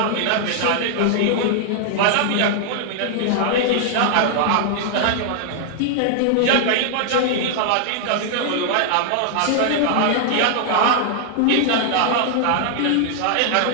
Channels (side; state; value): both; different; correlation 0.00